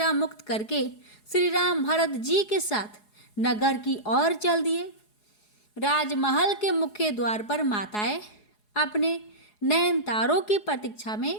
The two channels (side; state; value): right; late; 4.8 ms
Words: मुक्त करके श्री राम भरत जी के साथ नगर की ओर चल दिए। राजमहल के मुख्य द्वार पर माताएं अपने नयन तारों की प्रतीक्षा